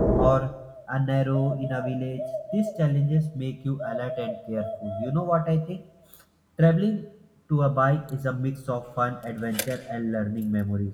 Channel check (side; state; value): both; identical; correlation 1.00